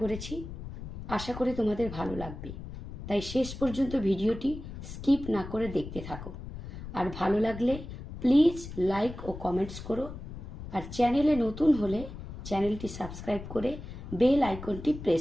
করেছি। আশা করি তোমাদের ভালো লাগবে, তাই শেষ পর্যন্ত ভিডিওটি স্কিপ না করে দেখতে থাকো। আর ভালো লাগলে প্লিজ লাইক ও কমেন্টস করো। আর চ্যানেলে নতুন হলে চ্যানেলটি সাবস্ক্রাইব করে বেল আইকনটি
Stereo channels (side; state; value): left; noise; rumble, 10 dB below the sound